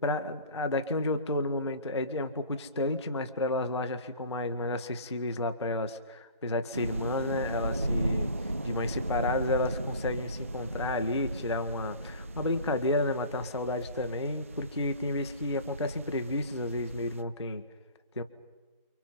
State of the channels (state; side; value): inverted; both; correlation -0.43